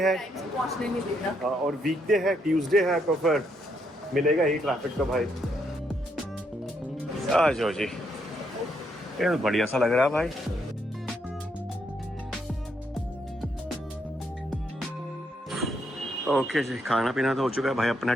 टाइम से पहुंचने नहीं देना। और वीकडे है, ट्यूसडे है, तो फिर मिलेगा ही ट्रैफिक। तो भाई आ जाओ जी, ये तो बढ़िया सा लग रहा है भाई। ओके जी, खाना पीना तो हो चुका है भाई अपना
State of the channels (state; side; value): normal; both; correlation 0.76